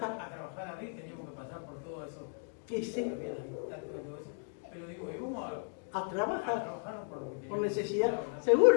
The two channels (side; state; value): right; silent; 54 dB below the other